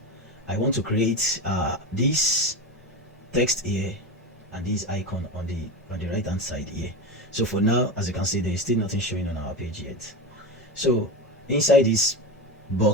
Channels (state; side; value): normal; both; correlation 0.21